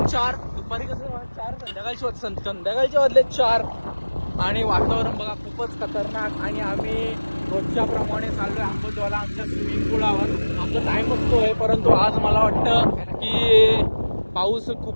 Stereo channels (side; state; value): both; inverted; correlation -1.00